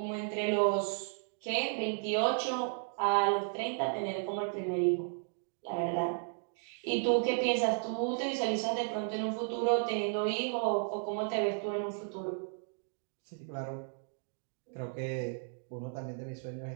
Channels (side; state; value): left; silent; 55 dB below the other